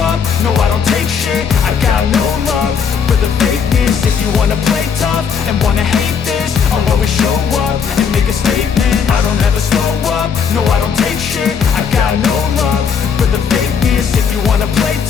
up, no I don't take shit. I got no love for the fakeness. If you wanna play tough and wanna hate this, I'll always show up and make a statement. I don't ever slow up, no I don't take shit. I got no love for the fakeness. If you wanna play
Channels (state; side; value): quieter; right; 6.6 dB